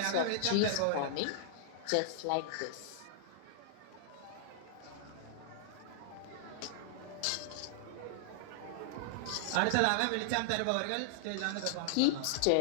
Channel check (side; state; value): both; different; correlation -0.01